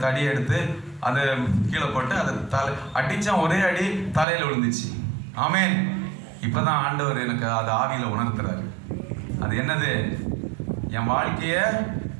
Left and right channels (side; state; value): left; drops out; at 4.2 s